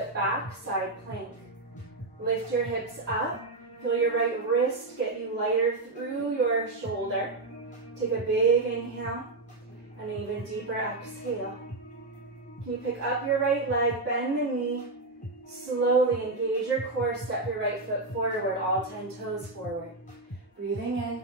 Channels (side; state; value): left; quieter; 3.3 dB